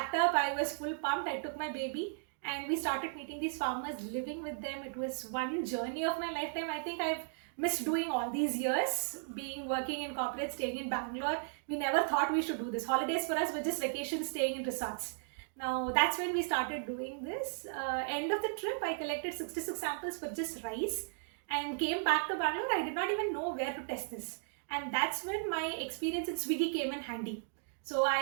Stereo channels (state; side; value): silent; left; digital silence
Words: up, I was full pumped, I took my baby and we started meeting these farmers, living with them. It was one journey of my lifetime. I think I've missed doing all these years, working in corporate, staying in Bangalore. We never thought we should do this. Holidays for us were just vacations, staying in resorts. Now that's when we started doing this. End of the trip, I collected 66 samples for just rice. and came back to Bangalore. I did not even know where to test this. And that's when my experience in Swiggy came in handy. So